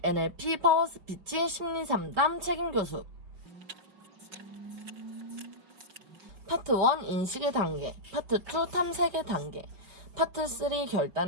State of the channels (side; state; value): left; late; 5.6 ms